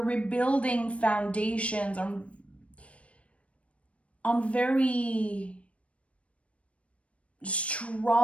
rebuilding foundations on very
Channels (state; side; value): late; right; 0.063 ms